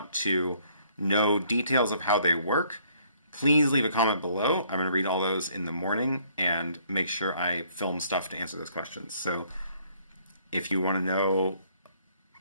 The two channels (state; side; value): inverted; both; correlation -0.64